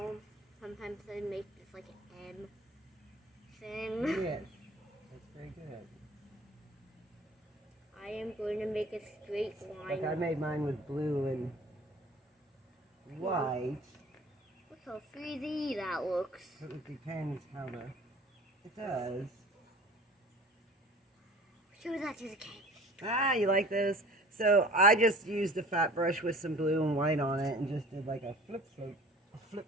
Sometimes they make this like an M thing. Yes, that's very good. I am going to make a straight line. Like I made mine with blue and white. Look how 3D that looks. So it depends how the it does. Show that to the cake. Ah, you like those? So I just used a fat brush with some blue and white on it and just did like a flip float. A flip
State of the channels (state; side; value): normal; both; correlation 0.45